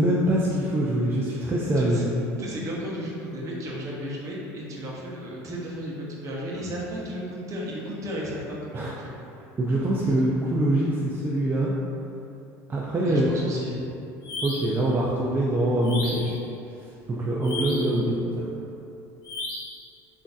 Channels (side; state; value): both; normal; correlation 0.60